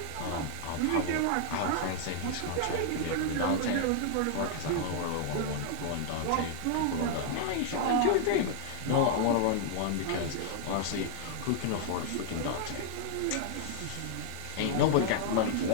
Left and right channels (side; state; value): both; different; correlation -0.01